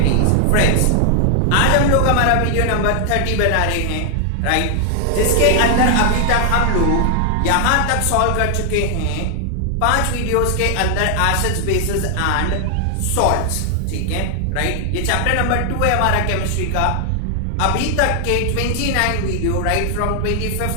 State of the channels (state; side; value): different; both; correlation 0.00